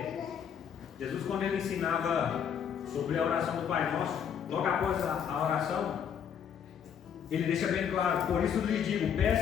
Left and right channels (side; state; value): right; quieter; 8.1 dB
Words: Jesus, quando ele ensinava sobre a oração do Pai Nosso, logo após a oração, ele deixa bem claro: por isso lhes digo,